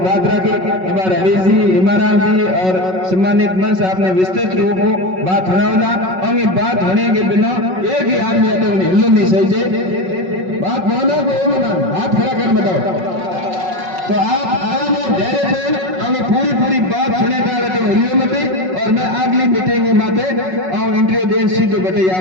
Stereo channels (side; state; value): left; late; 5.4 ms